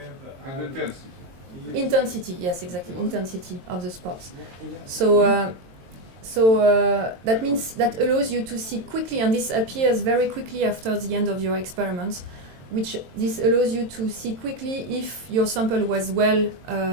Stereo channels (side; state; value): left; late; 22 ms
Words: intensity. Intensity. Yes, exactly. Intensity of the spots. So that means that allows you to see quickly, and this appears very quickly after the end of your experiments, which this allows you to see quickly if your sample was well